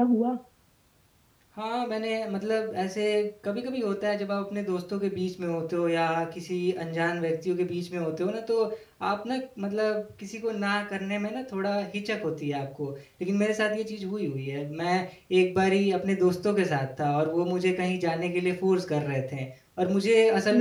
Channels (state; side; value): identical; both; correlation 1.00